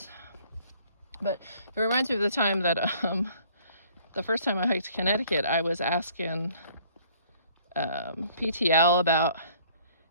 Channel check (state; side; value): inverted; both; correlation -0.58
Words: But it reminds me of the time that the first time I hiked Connecticut, I was asking PTL about